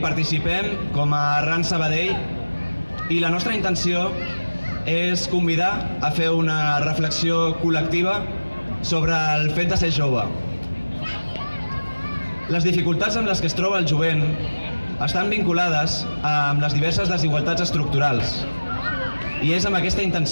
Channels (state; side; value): inverted; both; correlation -1.00